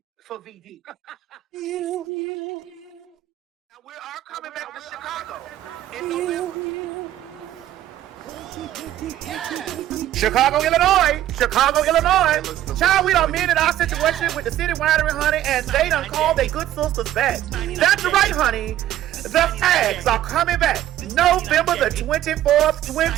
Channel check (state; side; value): quieter; left; 13.0 dB